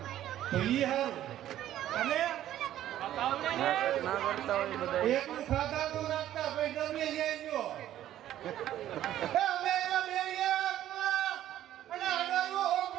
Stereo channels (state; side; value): quieter; left; 12.5 dB